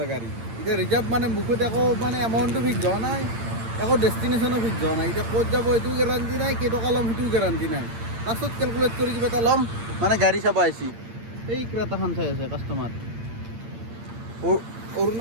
গাড়ী এতিয়া ৰিজাৰ্ভ মানে মুখত একো মানে এমাউণ্টটো ফিক্স হোৱা নাই একো ডেষ্টিনেশ্যনো ফিক্স হোৱা নাই এতিয়া ক'ত যাব এইটোও গেৰাণ্টি নাই কেইটকা ল'ম সেইটোও গেৰাণ্টি নাই লাষ্টত কেলকুলেট কৰি কিবা এটা ল'ম মানে গাড়ী চাব আহিছি এই ক্ৰেতাখন চাই আছে কাষ্টমাৰ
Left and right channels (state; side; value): late; left; 8.8 ms